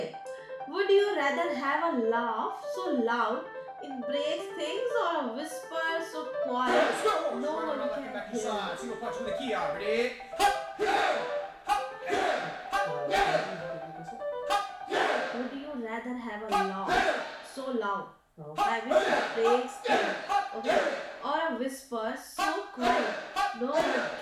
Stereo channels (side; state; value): both; identical; correlation 1.00